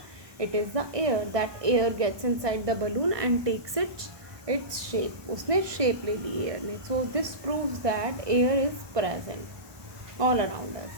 It is the air. That air gets inside the balloon and takes its shape. उसने शेप ले ली एयर ने. So this proves that air is present all around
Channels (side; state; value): left; late; 1.2 ms